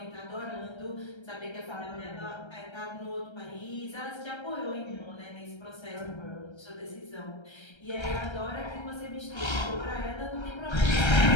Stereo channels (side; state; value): right; late; 1.3 ms